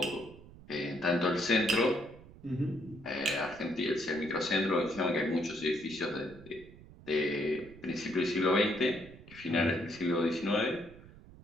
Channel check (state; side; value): noise; right; rumble, 20 dB below the sound